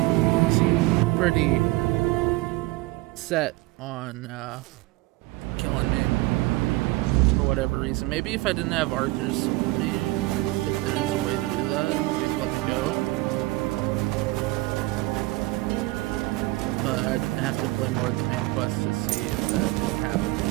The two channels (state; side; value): quieter; left; 20.4 dB